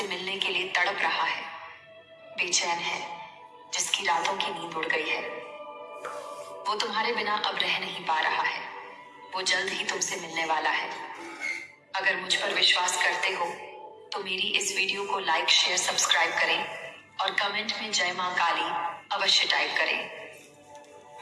मिलने के लिए तड़प रहा है, बेचैन है, जिसकी रातों की नींद उड़ गई है। वो तुम्हारे बिना अब रह नहीं पा रहा है। वो जल्द ही तुमसे मिलने वाला है। अगर मुझ पर विश्वास करते हो तो मेरी इस वीडियो को लाइक, शेयर, सब्सक्राइब करें और कमेंट में जय मां काली अवश्य टाइप करें।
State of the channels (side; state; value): both; identical; correlation 1.00